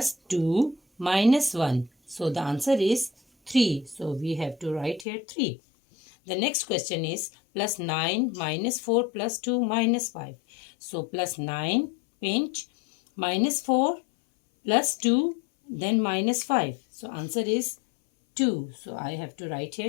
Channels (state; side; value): drops out; right; at 5.1 s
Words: 2 minus 1. So the answer is 3. So we have to write here 3. The next question is plus 9 minus 4 plus 2 minus 5. So plus 9 pinch, minus 4 plus 2, then minus 5. So answer is 2. So I have to write